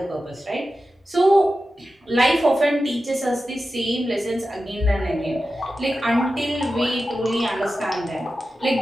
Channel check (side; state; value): both; normal; correlation 0.93